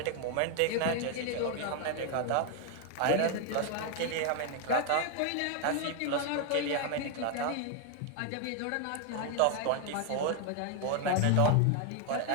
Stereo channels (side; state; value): both; different; correlation 0.00